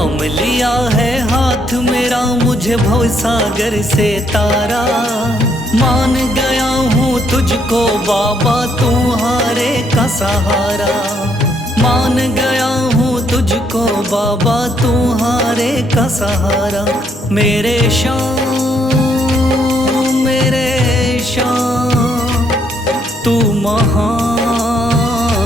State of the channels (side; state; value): both; normal; correlation 0.71